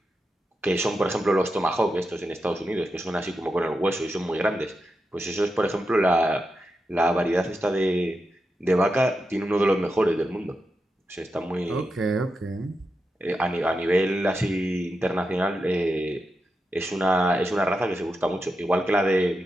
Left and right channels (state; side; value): normal; both; correlation 0.88